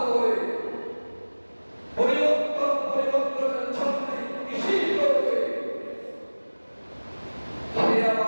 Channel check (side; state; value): both; inverted; correlation -1.00